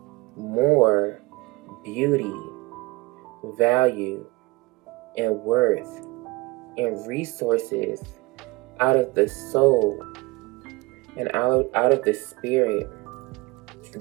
more beauty, value, and worth and resources out of the soul and out of the spirit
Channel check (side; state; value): left; quieter; 23.4 dB